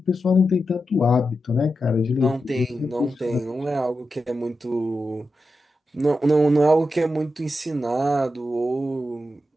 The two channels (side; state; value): both; normal; correlation 0.89